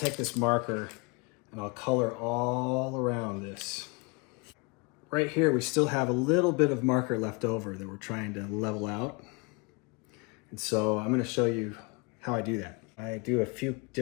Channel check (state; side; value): quieter; right; 30.0 dB